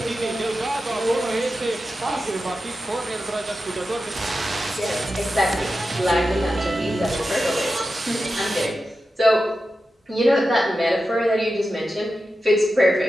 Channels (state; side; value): normal; both; correlation 0.91